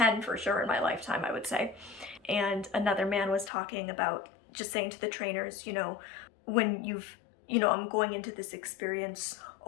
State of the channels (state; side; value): drops out; right; at 3.5 s